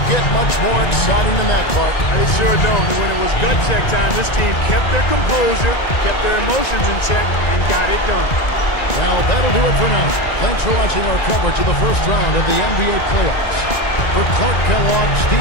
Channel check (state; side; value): late; right; 1.9 ms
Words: get much more exciting than that, Clark. They sure don't. And when it was gut check time, this team kept their composure, kept their emotions in check, and got it done. Well, that'll do it for now. Thanks for watching our coverage of the first round of the NBA playoffs. For Clark Kellogg,